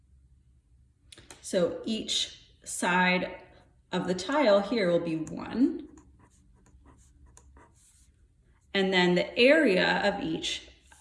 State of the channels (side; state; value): both; identical; correlation 1.00